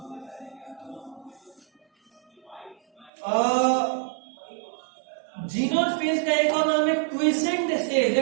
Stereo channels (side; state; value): left; drops out; at 3.1 s